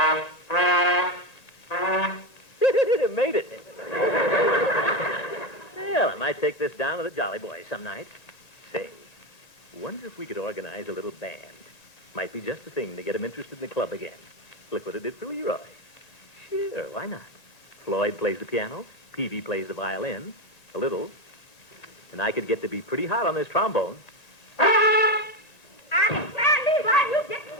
Made it. Well, I might take this down to the Jolly Boys some night. Say, wonder if we could organize a little band. Might be just the thing to get them interested in the club again. Look what it did for Leroy. Sure, why not? Floyd plays the piano, Peavy plays the violin, a little, and I could get to be pretty hot on this trombone. why are you getting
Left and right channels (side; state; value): right; late; 1.9 ms